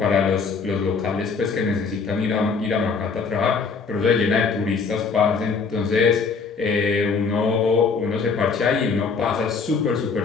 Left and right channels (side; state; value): right; quieter; 5.0 dB